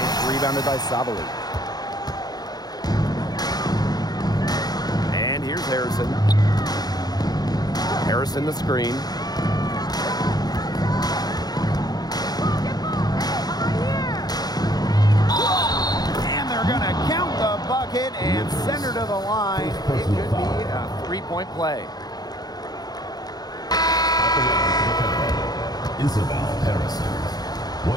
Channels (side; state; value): right; late; 0.19 ms